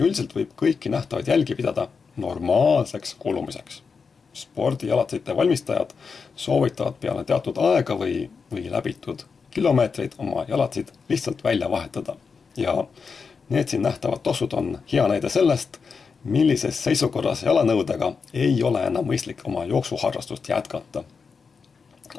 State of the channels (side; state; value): right; quieter; 5.3 dB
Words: võib kõiki nähtavaid jälgi pidada normaalseks kulumiseks. Spordijalatsite valmistajad soovitavad peale teatud aega või läbitud kilomeetreid oma jalatsid lihtsalt välja vahetada. Ja need siin nähtavad tossud on hea näide sellest, millises seisukorras jalanõudega ei ole enam mõistlik oma jooksuharrastust jätkata.